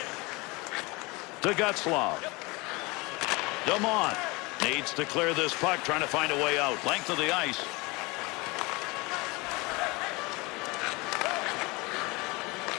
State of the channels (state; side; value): quieter; right; 25.1 dB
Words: To Getzlaf. Dumont needs to clear this puck, trying to find a way out. Length of the ice.